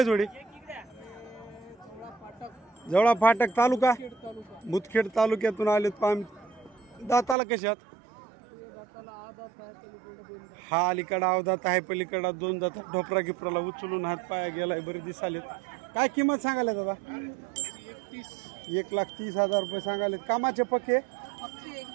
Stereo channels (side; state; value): left; drops out; at 7.4 s